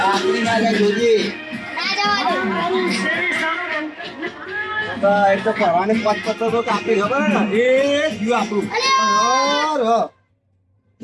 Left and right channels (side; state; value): both; identical; correlation 1.00